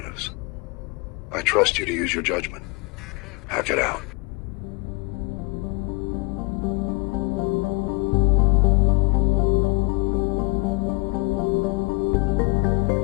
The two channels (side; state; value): right; quieter; 28.2 dB